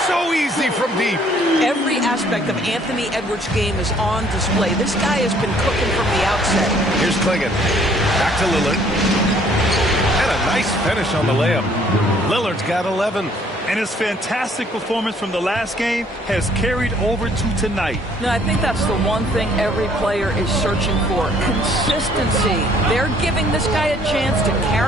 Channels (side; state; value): both; normal; correlation 0.61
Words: so easy from deep. Every aspect of Anthony Edwards' game is on display. This guy has been cooking from the outset. Here's Klingon. Back to Lillard. And a nice finish on the layup. Lillard's got 11. And his fantastic performance from the last game has carried over to tonight. No, I think that's the one thing every player is searching for. Consistency. They're giving this guy a chance to